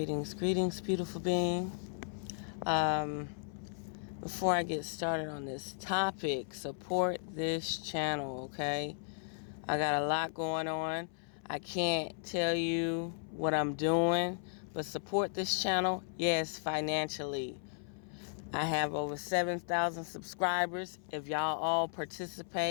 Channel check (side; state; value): right; silent; 54 dB below the other